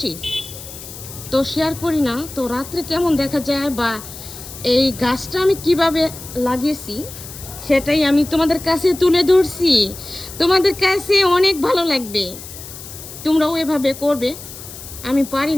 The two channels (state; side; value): noise; left; hiss, 14 dB below the sound